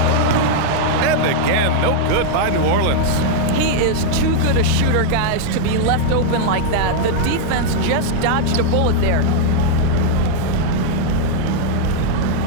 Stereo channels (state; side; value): different; both; correlation -0.01